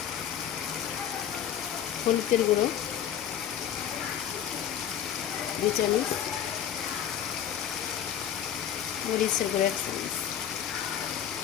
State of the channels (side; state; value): right; quieter; 9.6 dB